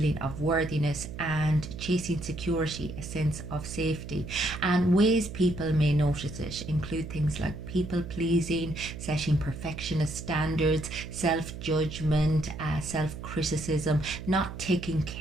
of worthiness, and chasing security, a sense of safety. And ways people may notice it include things like people pleasing, setting perfectionist standards, self judgment, self criticism, not taking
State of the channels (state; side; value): noise; right; hum, 10 dB below the sound